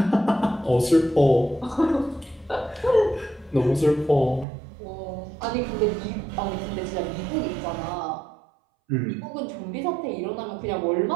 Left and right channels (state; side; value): drops out; left; at 4.5 s